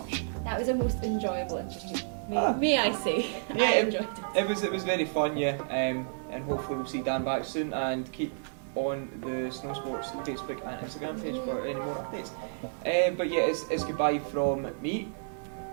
That was a most enjoyable interview. May I say? Yeah, I enjoyed it. It was very fun, yeah. And hopefully we'll see Dan back soon, and keep on the Snowsports Facebook and Instagram page for any more updates. But yeah, it's goodbye from me.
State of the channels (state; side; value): silent; left; 57 dB below the other